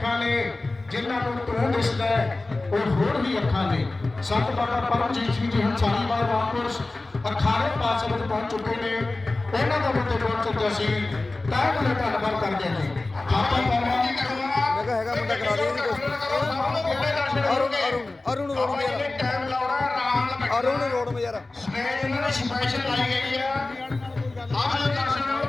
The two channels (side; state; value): right; quieter; 3.1 dB